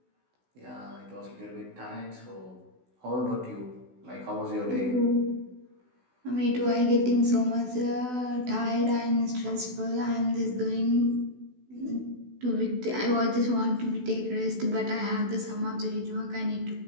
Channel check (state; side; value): late; left; 16 ms